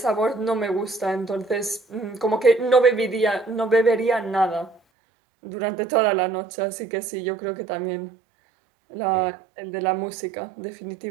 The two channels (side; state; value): left; drops out; at 4.8 s